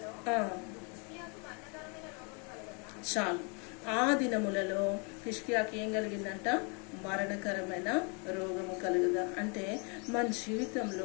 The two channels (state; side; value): quieter; right; 34.6 dB